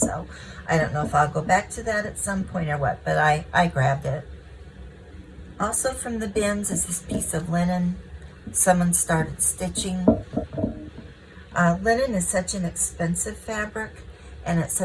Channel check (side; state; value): both; identical; correlation 1.00